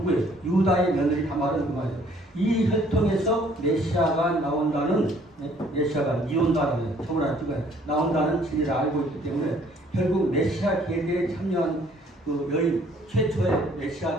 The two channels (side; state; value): both; normal; correlation 0.60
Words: 유다의 며느리 다말은 그 말이에요. 이 혈통에서 메시아가 나온다는 메시아가 이온다는 저번에 나온다는 진리를 알고 있기 때문에 결국 메시아 계대에 참여한 그 여인 최초의